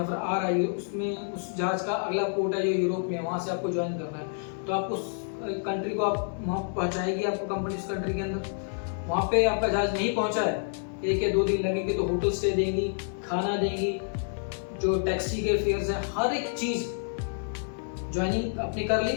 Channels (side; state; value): right; silent; digital silence